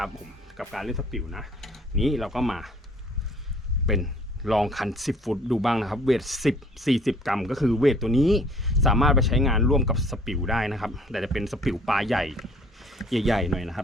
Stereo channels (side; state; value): both; normal; correlation 0.56